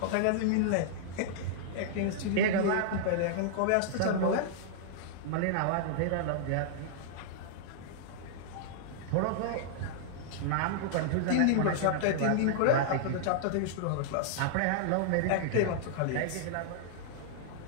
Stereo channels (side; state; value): both; different; correlation -0.01